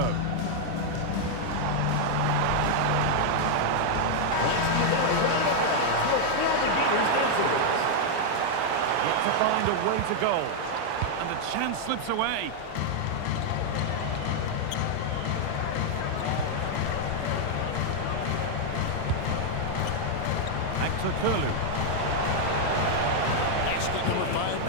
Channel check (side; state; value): both; different; correlation 0.00